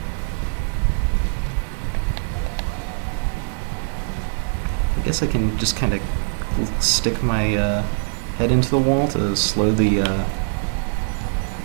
I guess I can just kind of stick my head into the wall to slow the...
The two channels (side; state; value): left; silent; digital silence